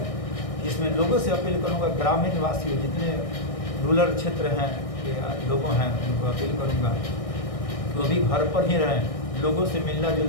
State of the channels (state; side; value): late; right; 1.6 ms